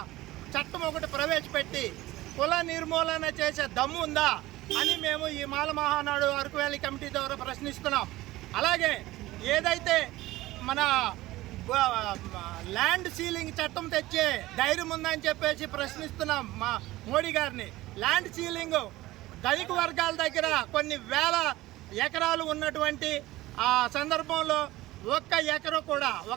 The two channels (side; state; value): left; quieter; 17.6 dB